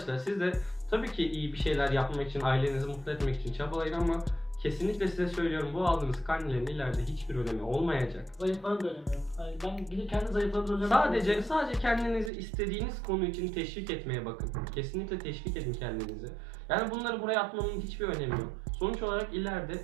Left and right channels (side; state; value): left; drops out; at 12.3 s